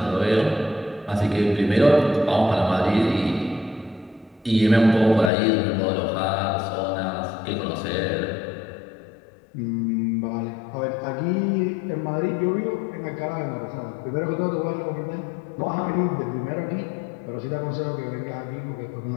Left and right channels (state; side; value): drops out; right; at 5.3 s